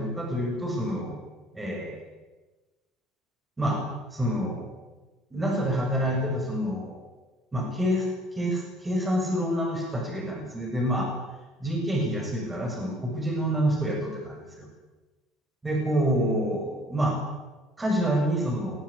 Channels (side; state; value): both; normal; correlation 0.56